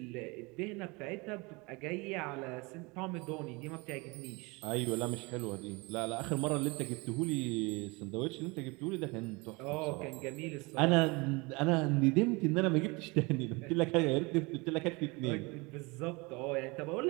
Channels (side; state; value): left; quieter; 26.4 dB